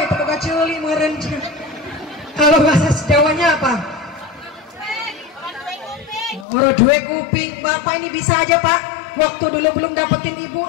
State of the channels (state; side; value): drops out; right; at 6.5 s